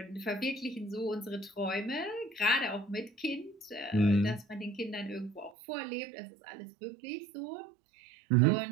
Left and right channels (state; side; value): drops out; left; at 5.6 s